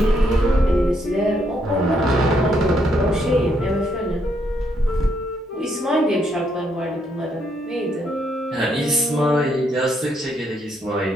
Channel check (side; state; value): both; normal; correlation 0.74